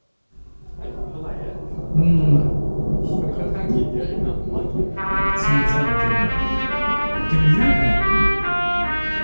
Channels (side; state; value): both; inverted; correlation -1.00